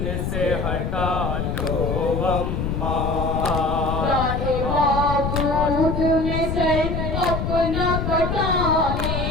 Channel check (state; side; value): noise; left; rumble, 1 dB below the sound